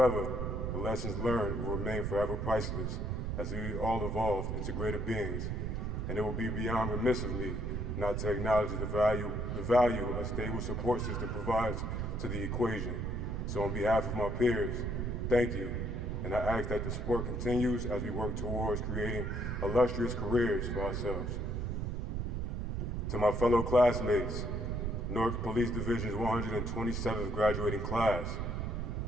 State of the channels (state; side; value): noise; right; rumble, 2 dB below the sound